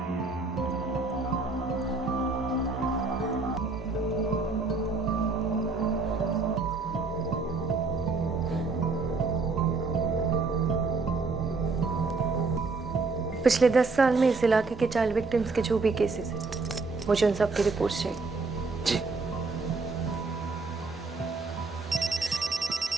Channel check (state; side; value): quieter; left; 4.0 dB